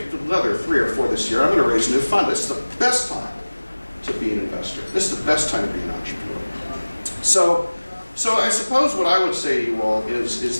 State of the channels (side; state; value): both; inverted; correlation -1.00